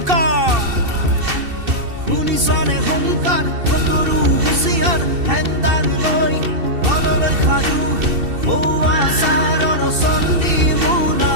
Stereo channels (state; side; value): late; left; 2.7 ms